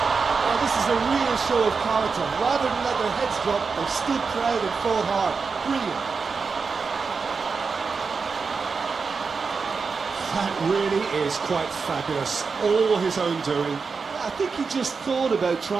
Well, this is a real show of character. Rather than let their heads drop, they've stood proud and fought hard. Brilliant. That really is quite fabulous. All his own doing. I think he just thought about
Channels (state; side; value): quieter; left; 5.0 dB